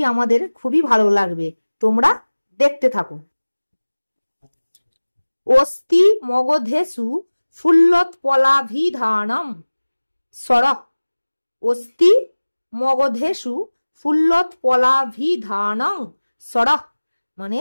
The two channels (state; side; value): inverted; both; correlation -1.00